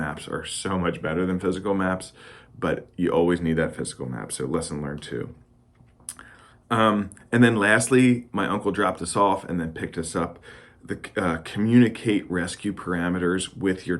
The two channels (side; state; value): both; identical; correlation 1.00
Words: are so much better than physical maps, but you always need that physical map, so lesson learned too. And then lastly, my uncle dropped us off and then picked us up. Communicate rescue parameters with your